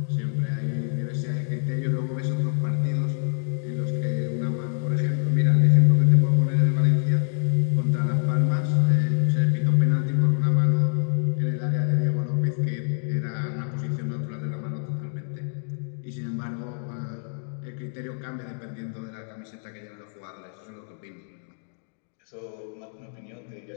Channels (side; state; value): right; silent; 61 dB below the other